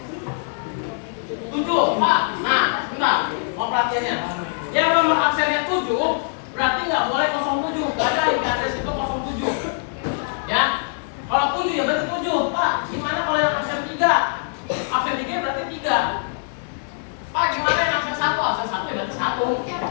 7, Pak. Nah, bentar, mau perhatiannya. Yang nomor absennya 7, berarti nggak boleh 07. Nggak ada IP address itu 07. Ya, kalau 7 ya berarti 7. Pak, gimana kalau yang absen 3? Absen 3 berarti 3. Pak, gimana yang absen 1? Absen 1 ya berarti 1.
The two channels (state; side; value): silent; right; digital silence